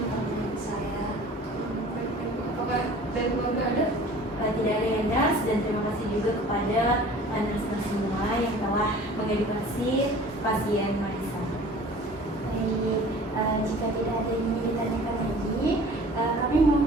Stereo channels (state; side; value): normal; both; correlation 0.46